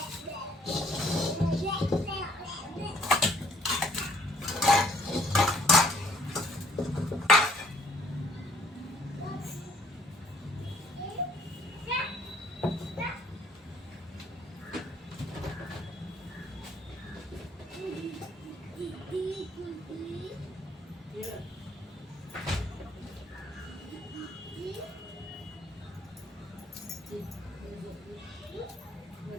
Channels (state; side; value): normal; both; correlation 0.63